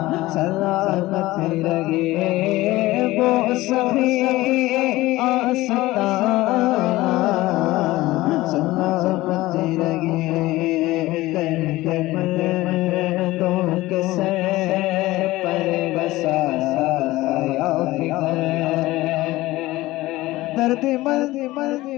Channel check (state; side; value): quieter; right; 18.2 dB